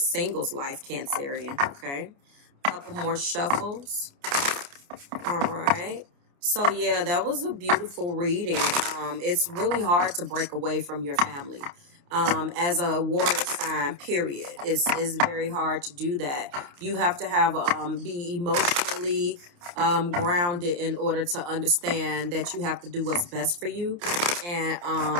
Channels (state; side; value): late; left; 29 ms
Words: life, Cancerian. Okay. A couple more shuffles. All right. So, yeah, that was a beautiful reading. It's really hard to break away from your family. As a water sign, period. It's very hard to do that. You have to have be emotionally grounded in order to understand that you have to do what's best for you.